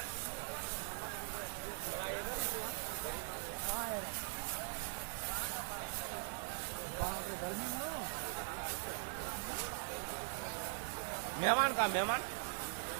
मेहमान कहाँ मेहमान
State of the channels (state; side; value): silent; left; digital silence